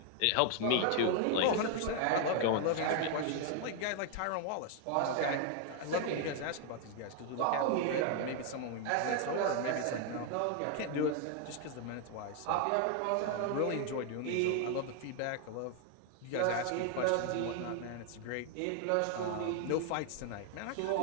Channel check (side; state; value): both; different; correlation 0.00